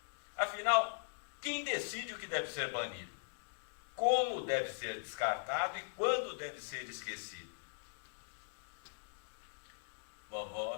Afinal, quem decide o que deve ser banido? Como deve ser descartado e quando deve ser esquecido?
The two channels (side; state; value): right; silent; digital silence